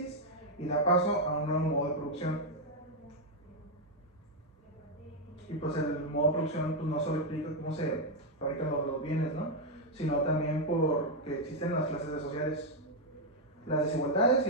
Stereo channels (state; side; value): normal; both; correlation 0.01